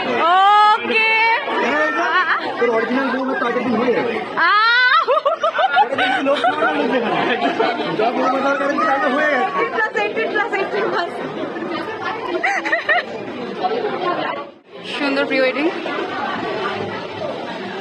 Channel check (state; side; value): identical; both; correlation 1.00